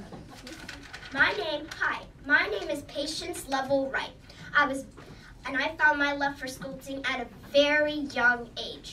My name is Patience Lovell Wright. I found my love for sculpting at a very young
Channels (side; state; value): both; identical; correlation 1.00